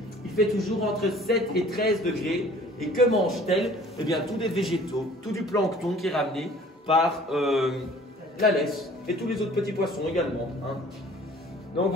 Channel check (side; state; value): both; normal; correlation 0.51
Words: il fait toujours entre 7 et 13 degrés. Et que mangent-elles? Eh bien, tous des végétaux, tout du plancton qui est ramené par la laisse et tous les autres petits poissons également. Hein. Donc